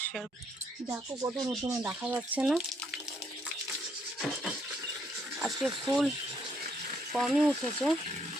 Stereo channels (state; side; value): normal; both; correlation 0.71